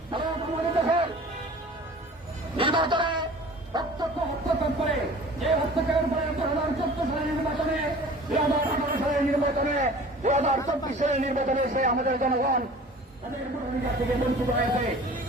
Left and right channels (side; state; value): both; normal; correlation 0.44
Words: ভারত আমাদের দেশের নির্বাচনে হস্তক্ষেপ করে, যে হস্তক্ষেপের পরে 2014 সালের নির্বাচনে, 2018 সালের নির্বাচনে, 2024 সালের নির্বাচনে সে আমাদের জনগণ তাদের ভোটাধিকার থেকে বঞ্চিত হয়েছে।